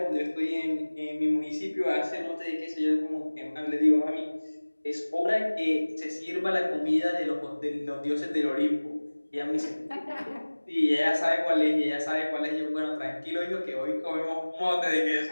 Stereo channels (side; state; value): both; inverted; correlation -1.00